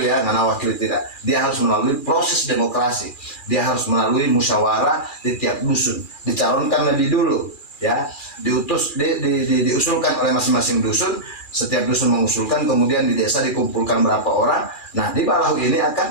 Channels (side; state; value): right; late; 2.4 ms